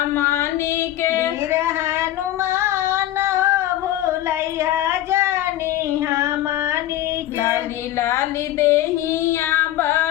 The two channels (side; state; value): right; quieter; 13.7 dB